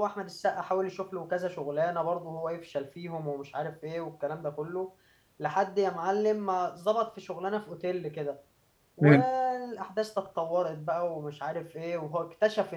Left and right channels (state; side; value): identical; both; correlation 1.00